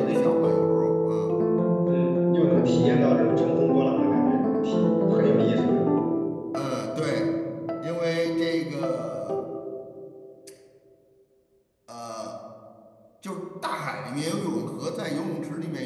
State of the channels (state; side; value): identical; both; correlation 1.00